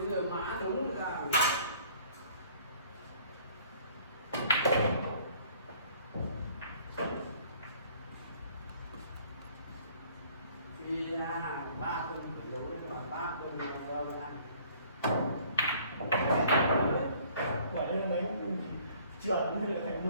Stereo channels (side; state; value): both; inverted; correlation -0.56